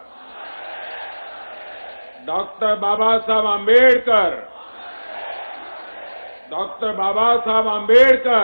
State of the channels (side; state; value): both; inverted; correlation -1.00